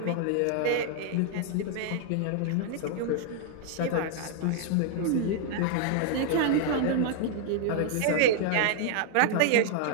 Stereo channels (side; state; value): both; different; correlation 0.00